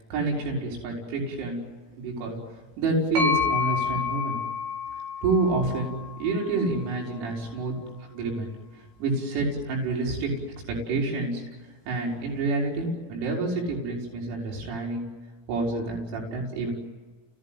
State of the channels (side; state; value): left; late; 18 ms